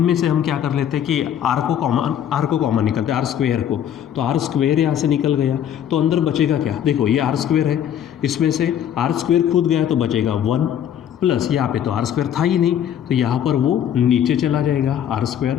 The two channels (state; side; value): quieter; right; 9.8 dB